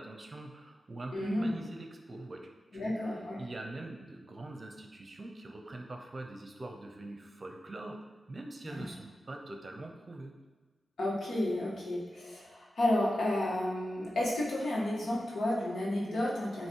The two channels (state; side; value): normal; both; correlation 0.92